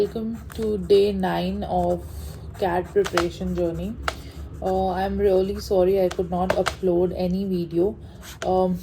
welcome to day 9 of CAT preparation journey. I'm really sorry I could not upload any video um,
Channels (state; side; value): identical; both; correlation 1.00